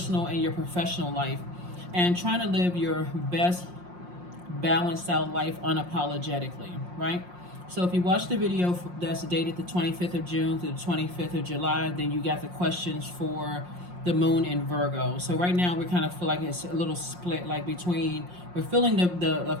and your professional life, and trying to live your best balanced out life unapologetically, right? So if you watch the video that's dated the 25th of June to the 25th of July, then you got the questions for the moon in Virgo. So right now we kind of feel like it's a little split, like between, we're feeling the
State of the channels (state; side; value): late; left; 5.6 ms